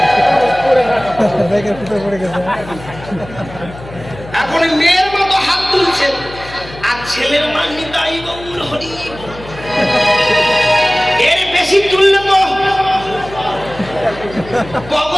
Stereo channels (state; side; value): noise; left; hum, 16 dB below the sound